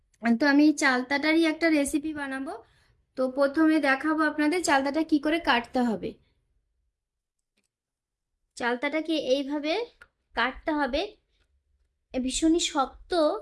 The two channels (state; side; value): identical; both; correlation 1.00